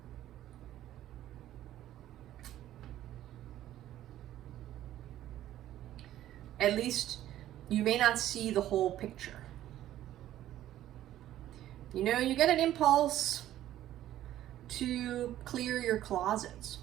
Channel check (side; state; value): left; quieter; 13.0 dB